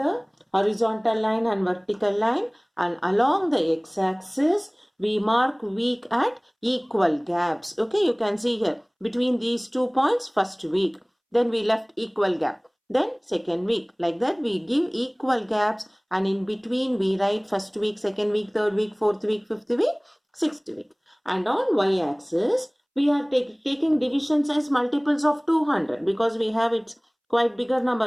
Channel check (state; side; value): identical; both; correlation 1.00